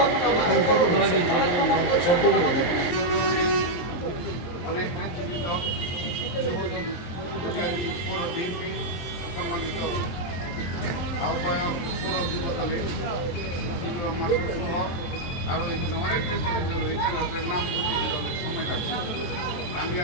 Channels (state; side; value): late; right; 23 ms